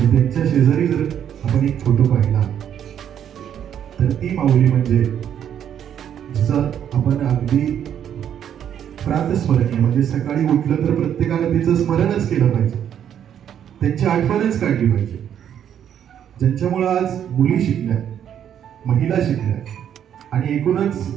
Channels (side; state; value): left; quieter; 9.4 dB